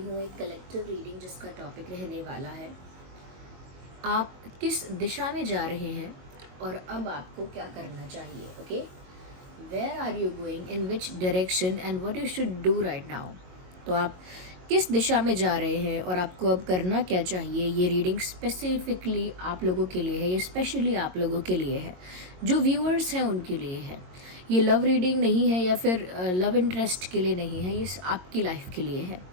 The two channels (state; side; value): late; left; 22 ms